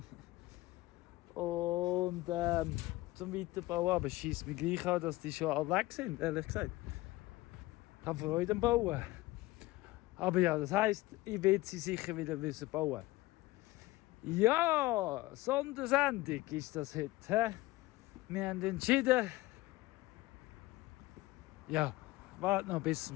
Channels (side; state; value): right; quieter; 19.1 dB